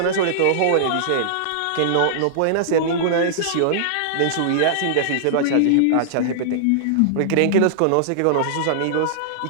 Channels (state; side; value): different; both; correlation -0.01